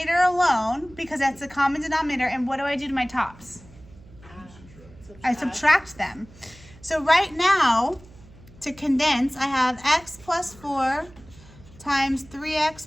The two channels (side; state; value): right; noise; hum, 23 dB below the sound